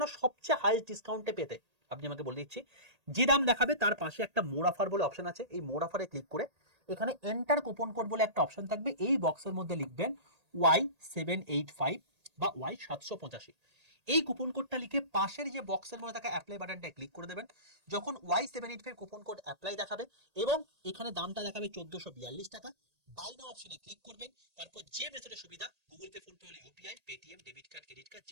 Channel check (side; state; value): left; late; 1.8 ms